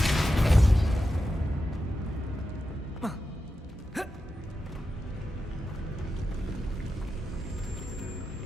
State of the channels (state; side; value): normal; both; correlation 0.90